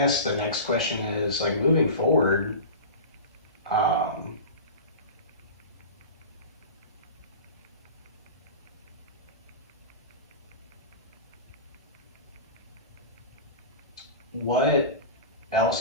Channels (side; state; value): both; inverted; correlation -0.31